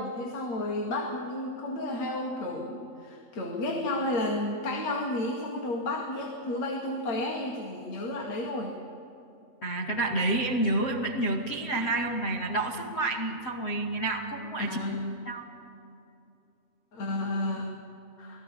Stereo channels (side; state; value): right; late; 7.9 ms